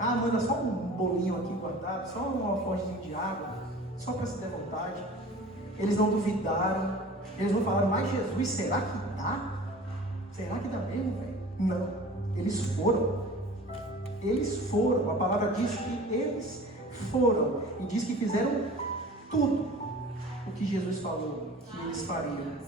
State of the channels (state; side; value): normal; both; correlation 0.42